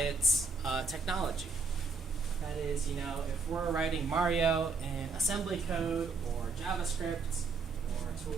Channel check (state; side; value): quieter; left; 4.2 dB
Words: technology. That is, if we're writing Mario in assembly code or JavaScript or a